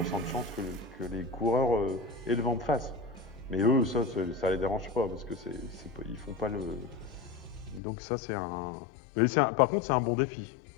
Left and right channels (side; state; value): right; drops out; at 7.8 s